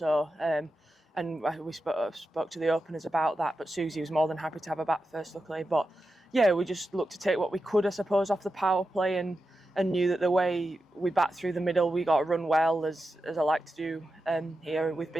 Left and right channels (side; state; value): both; normal; correlation 0.90